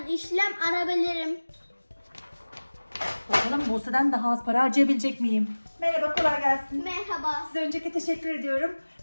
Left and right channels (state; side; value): inverted; both; correlation -1.00